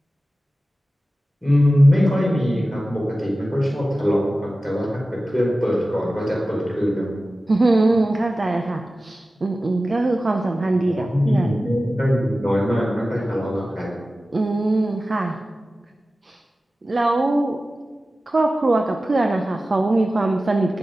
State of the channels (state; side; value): normal; both; correlation 0.95